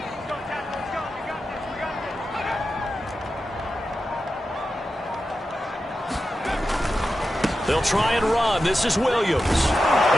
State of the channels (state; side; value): normal; both; correlation 0.91